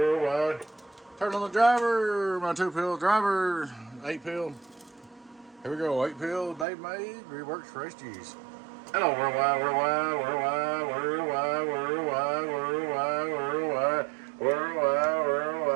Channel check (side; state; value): left; drops out; at 6.7 s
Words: Turn on the driver. My 2-pill driver. 8-pill. Here we go. 8-pill. Dave made. Reworks for HGs. Hello, worldwide.